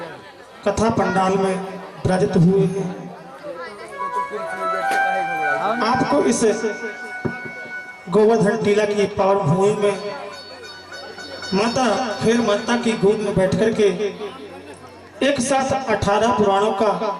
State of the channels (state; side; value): identical; both; correlation 1.00